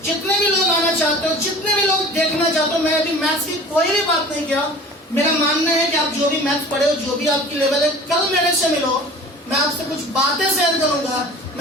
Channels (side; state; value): both; normal; correlation 0.42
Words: जितने भी लोग आना चाहते हो, जितने भी लोग देखना चाहते हो, मैं अभी मैथ्स की कोई भी बात नहीं किया। मेरा मानना है कि आप जो भी मैथ्स पढ़े हो, जो भी आपकी लेवल है, कल मेरे से मिलो, मैं आपसे कुछ बातें शेयर करूंगा।